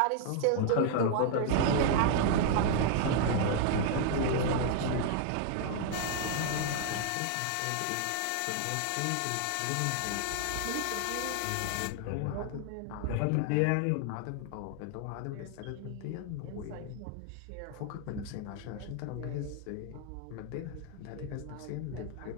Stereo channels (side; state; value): both; different; correlation 0.00